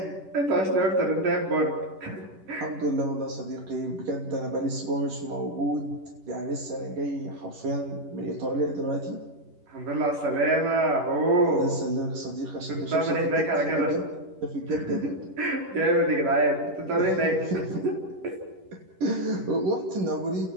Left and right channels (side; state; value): left; late; 11 ms